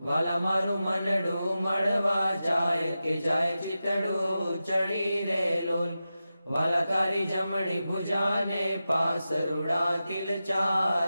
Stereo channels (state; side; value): inverted; both; correlation -0.92